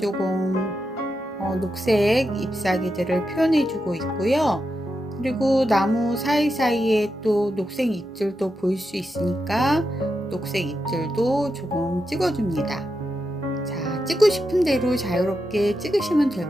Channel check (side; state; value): both; normal; correlation 0.87